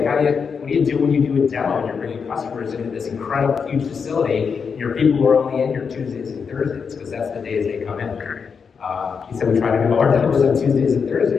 what do you do when you do a demo and you're bringing customers into this incredible, huge facility, and your people are only in here Tuesdays and Thursdays, because that's the days they come in. He said we try to do our demos on Tuesdays and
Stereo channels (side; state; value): right; quieter; 6.0 dB